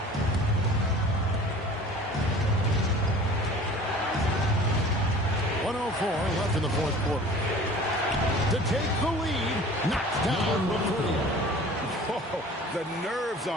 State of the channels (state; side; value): normal; both; correlation 0.44